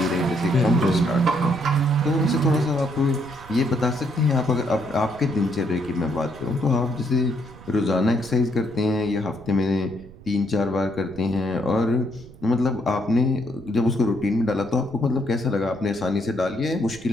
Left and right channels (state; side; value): noise; right; rumble, 20 dB below the sound